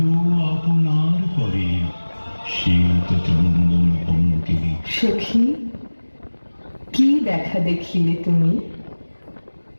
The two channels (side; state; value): both; inverted; correlation -1.00